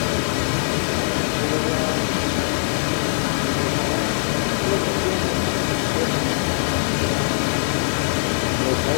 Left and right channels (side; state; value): right; silent; 65 dB below the other